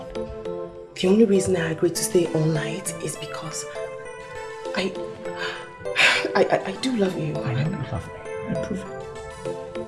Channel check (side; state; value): both; identical; correlation 1.00